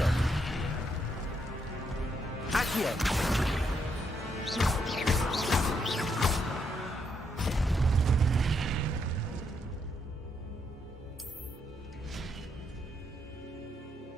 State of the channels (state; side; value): normal; both; correlation 0.77